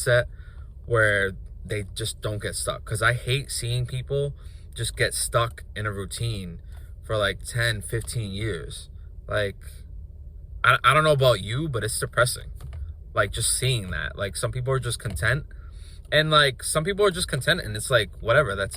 where they just don't get stuck. Because I hate seeing people just get stuck in a routine for like 10, 15 years. Like, I don't know about you, but it's depressing. Like, just seeing that. Like, some people are just content, and like, some people are just content, and it's like, whatever,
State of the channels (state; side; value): identical; both; correlation 1.00